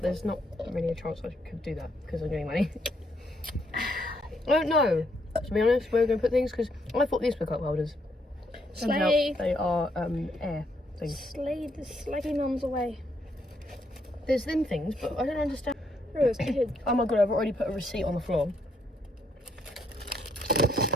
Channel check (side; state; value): both; normal; correlation 0.74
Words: there's not really a chance I could do that because I'm getting money. I don't know, to be honest, where we're going to put things because I thought these were cup holders. Turns out Slay. they are air. things. Slade the slaggy mums away. There's them things, but I don't understand. Oh, it's kid. Oh my god, I've already put a receipt on the floor.